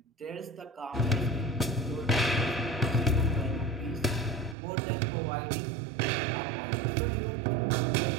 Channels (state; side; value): drops out; left; at 4.5 s